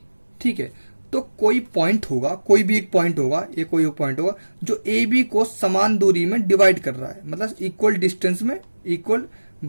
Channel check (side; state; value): both; inverted; correlation -1.00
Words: ठीक है, तो कोई पॉइंट होगा, कोई भी एक पॉइंट होगा, ये कोई एक पॉइंट होगा जो ए बी को समान दूरी में डिवाइड कर रहा है, मतलब इक्वल डिस्टेंस में, इक्वल